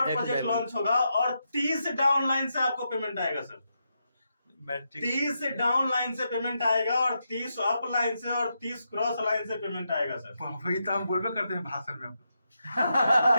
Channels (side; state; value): both; inverted; correlation -0.84